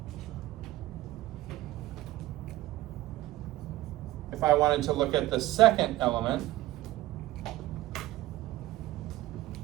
wanted to look at the second element,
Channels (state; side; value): quieter; left; 16.4 dB